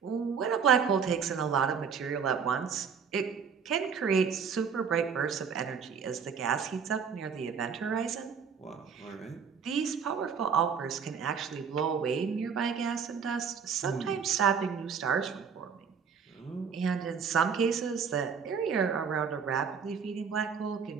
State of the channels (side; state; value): left; quieter; 6.5 dB